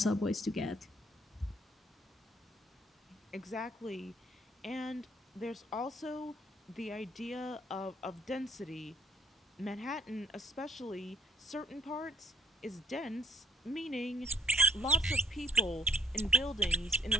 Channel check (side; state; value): both; normal; correlation 0.63